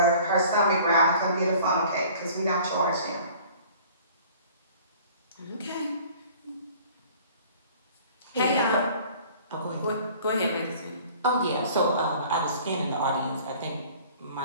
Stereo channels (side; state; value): both; inverted; correlation -0.49